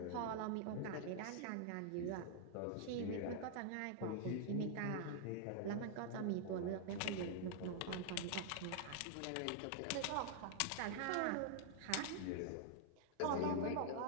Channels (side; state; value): both; different; correlation -0.01